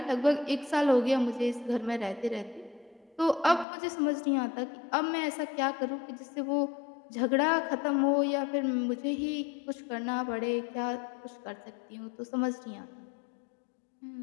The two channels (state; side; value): drops out; right; at 3.7 s